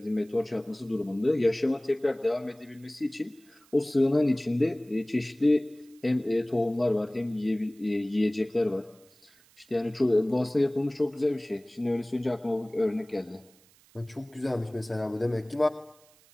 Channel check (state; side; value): noise; right; hiss, 29 dB below the sound